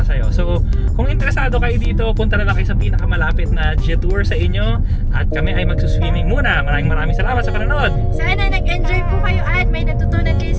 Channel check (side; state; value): both; identical; correlation 1.00